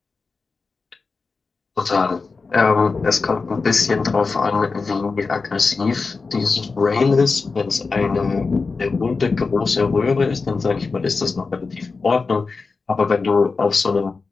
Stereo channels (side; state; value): right; quieter; 4.3 dB